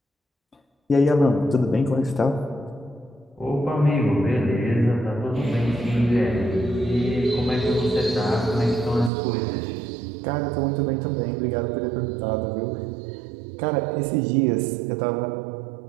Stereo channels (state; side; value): drops out; left; at 9.1 s